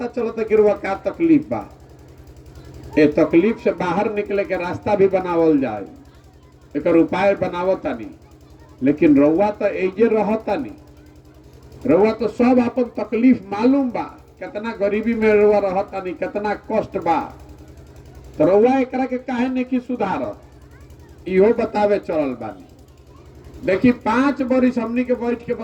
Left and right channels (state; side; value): identical; both; correlation 1.00